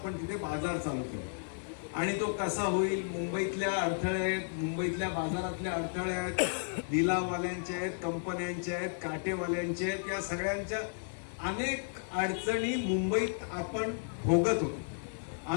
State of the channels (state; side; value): silent; right; digital silence